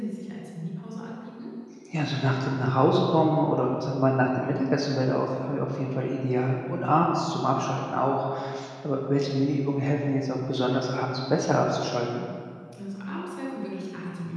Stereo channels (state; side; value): identical; both; correlation 1.00